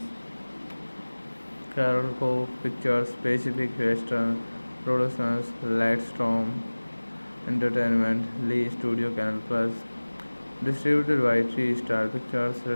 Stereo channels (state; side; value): inverted; both; correlation -1.00